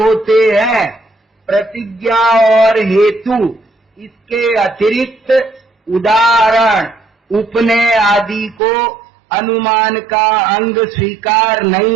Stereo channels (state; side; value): drops out; left; at 8.6 s